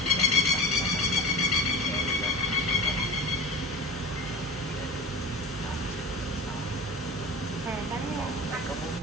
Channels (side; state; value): both; normal; correlation 0.32